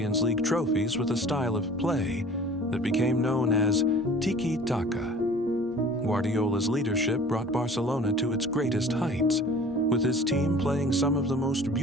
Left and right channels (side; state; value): both; normal; correlation 0.46